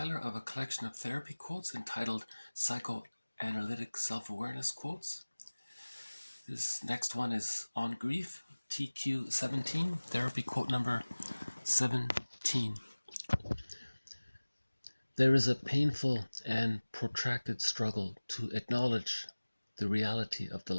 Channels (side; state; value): both; inverted; correlation -1.00